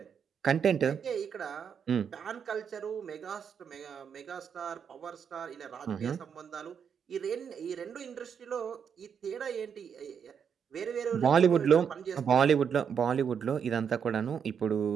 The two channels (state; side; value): quieter; left; 7.3 dB